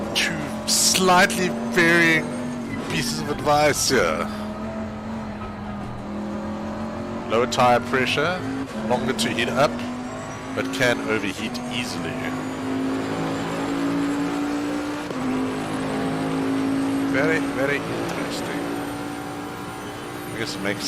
2 slightly varying pieces of advice here. Lower tire pressure, longer to heat up, but can overheat easily. Very, very interesting. I guess it makes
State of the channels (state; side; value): identical; both; correlation 1.00